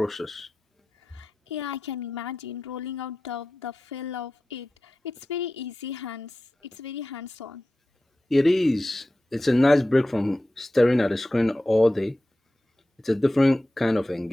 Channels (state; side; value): normal; both; correlation 0.94